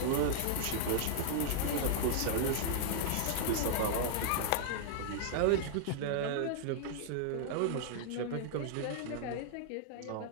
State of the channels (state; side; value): different; both; correlation -0.01